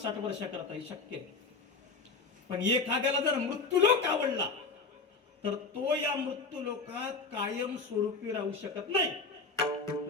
वर्ष करता शक्य आहे. पण एखाद्याला जर मृत्यूलोक आवडला तर तो या मृत्यूलोकात कायम स्वरूपी राहू शकत नाही.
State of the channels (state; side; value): quieter; right; 4.3 dB